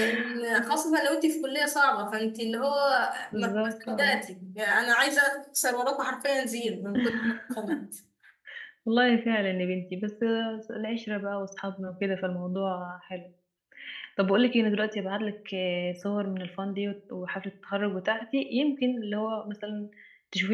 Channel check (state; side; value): identical; both; correlation 1.00